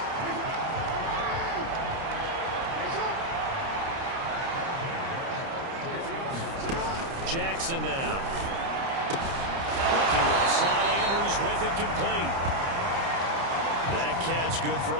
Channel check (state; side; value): late; left; 30 ms